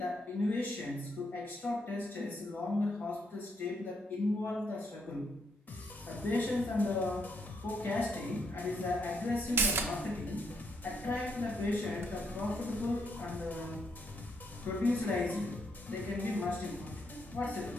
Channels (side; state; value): both; normal; correlation 0.75